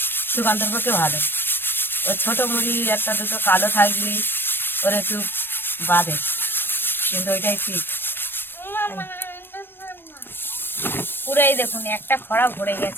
সুকান্তর পক্ষে ভালো। ও ছোট মুড়ি 1-2 কালো থাকলি ওর একটু বাঁধে, কিন্তু ওইটাই ঠিক। পুরো এই দেখুন একটা খড়া ভরে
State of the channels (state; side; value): late; right; 0.099 ms